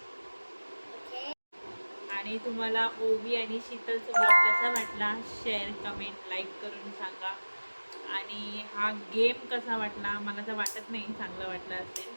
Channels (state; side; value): inverted; both; correlation -1.00